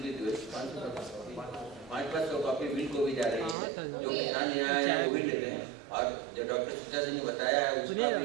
500 कॉपी मिल को भी जा रही है। जो किसान यहाँ आए हैं वो भी ले लें, और जो डॉक्टर सीता सिंह ने बताया है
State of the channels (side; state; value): left; drops out; at 3.6 s